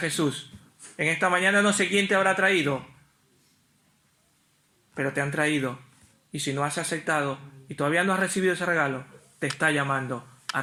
En esta mañana no sé quién te habrá traído, pero te han traído. Y si no has aceptado y todavía no has recibido ese regalo, te está llamando a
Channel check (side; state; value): both; identical; correlation 1.00